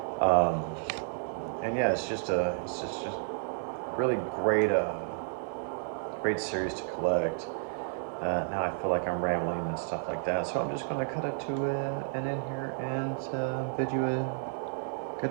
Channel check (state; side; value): silent; left; digital silence